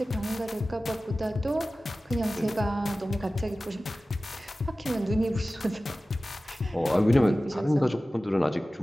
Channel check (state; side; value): normal; both; correlation 0.96